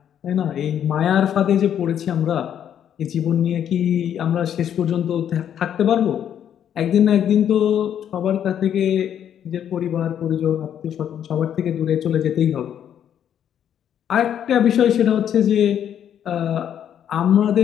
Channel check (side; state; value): right; quieter; 9.5 dB